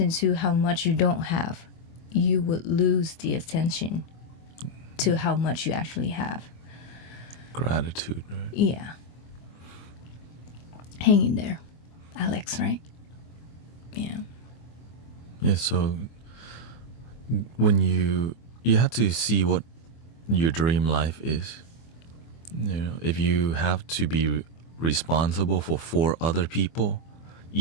to how much you don't have, you would lose the attention to how much you actually have. Gratitude, right? Yeah. Hang in there, Alex, right? Yeah. Yeah, so when you have to see what your dream life is. You know, if you have to be responsible for 4 other people,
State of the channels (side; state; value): right; late; 24 ms